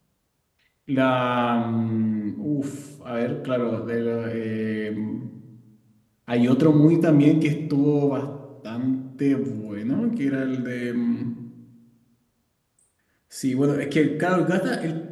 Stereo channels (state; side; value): identical; both; correlation 1.00